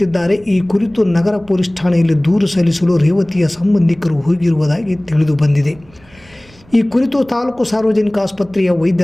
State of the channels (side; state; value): right; noise; rumble, 27 dB below the sound